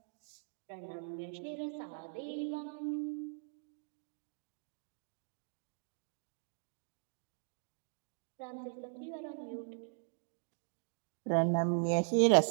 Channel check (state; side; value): silent; left; digital silence